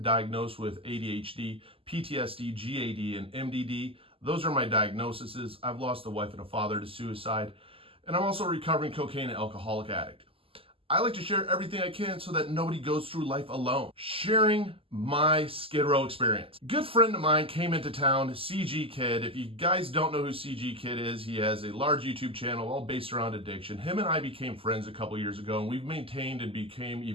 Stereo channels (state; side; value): late; left; 0.26 ms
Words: diagnosed with ADHD, PTSD, GAD, and MDD. Those are my diagnoses. I've lost a wife and a father to suicide. And I'm also a recovering cocaine and alcoholic addict. I like to share everything I can so that nobody goes through life alone. Sharing my Skid Row experience. Good friend of mine came into town, CG Kid. If you guys don't know who CG Kid is, he has a large YouTube channel all based around addiction. Him and I became friends a couple years ago, and we've maintained and became